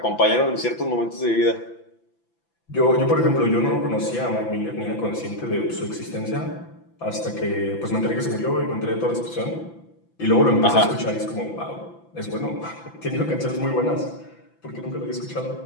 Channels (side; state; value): right; late; 5.9 ms